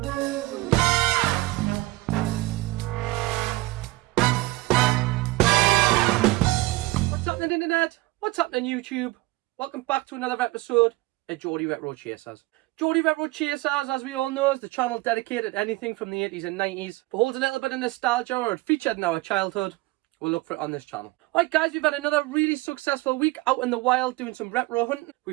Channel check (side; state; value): left; quieter; 20.5 dB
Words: What's happening internet? What's happening YouTube? Welcome back to another episode of Geordie Retro Chasers. Geordie Retro Chasers, as we all know, is the channel dedicated to anything from the 80s and 90s. If it holds a little bit of nostalgia or it featured in our childhood, we'll look for it on this channel. Alright guys, we've had another really successful week out in the wild doing some retro hunting.